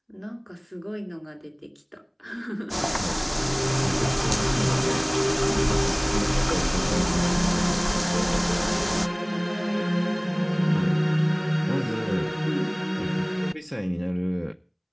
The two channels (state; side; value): identical; both; correlation 1.00